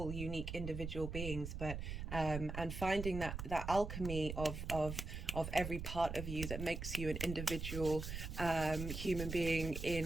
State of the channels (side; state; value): right; noise; rumble, 5 dB below the sound